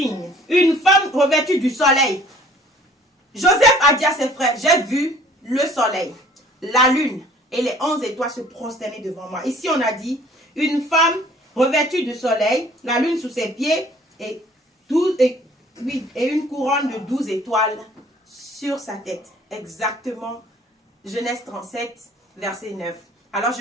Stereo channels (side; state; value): both; normal; correlation 0.53